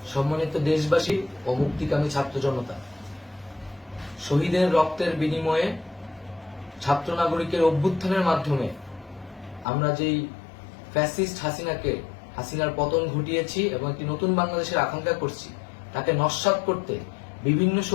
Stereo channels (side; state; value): right; drops out; at 9.7 s